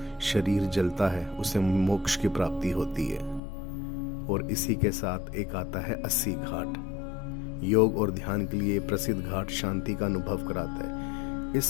शरीर जलता है उसे मोक्ष की प्राप्ति होती है। और इसी के साथ एक आता है 80 घाट, योग और ध्यान के लिए प्रसिद्ध घाट, शांति का अनुभव कराता है।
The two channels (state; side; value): drops out; right; at 3.4 s